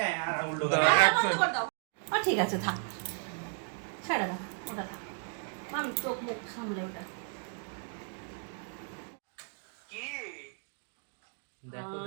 বন্ধ করে দাও। ঠিক আছে, থাক, ছেড়ে দাও, ওটা থাক। মাম চোখ মুখ সামলে ওটা। কি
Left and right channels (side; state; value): left; silent; 55 dB below the other